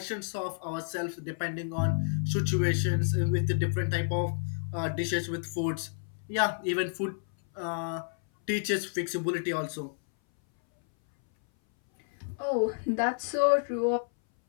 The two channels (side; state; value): right; silent; 58 dB below the other